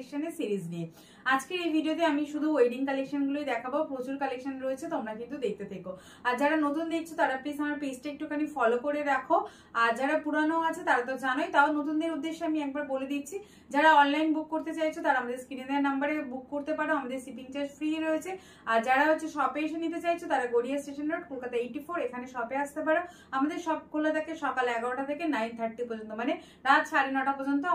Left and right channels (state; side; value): identical; both; correlation 1.00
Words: সিরিজ নিয়ে। আজকের এই ভিডিওতে আমি শুধু ওয়েডিং কালেকশনগুলোই দেখাবো, প্রচুর কালেকশন রয়েছে, তোমরা কিন্তু দেখতে থেকো। আর যারা নতুন দেখছো তারা প্লিজ আমার পেজটা একটুখানি ফলো করে রাখো, আর যারা পুরানো আছে তারা তো জানোই, তাও নতুনদের উদ্দেশ্যে আমি একবার বলে দিচ্ছি, যারা অনলাইন বুক করতে চাইছো তারা আমাদের স্ক্রিনে দেওয়া নাম্বারে বুক করতে পারো, আমাদের শিপিং চার্জ ফ্রি রয়েছে। আর যারা শপে এসে নিতে চাইছো তারা গড়িয়া স্টেশন রোড, কলকাতা 84 এখানে শপে আসতে পারো। আমাদের শপ খোলা থাকে সকাল 11টা থেকে 9:30 পর্যন্ত, মানে রাত 9:30 পর্যন্ত